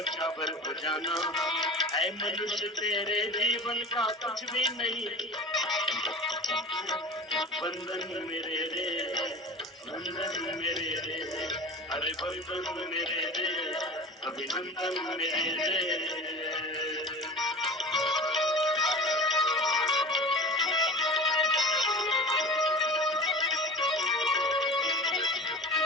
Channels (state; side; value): normal; both; correlation 0.36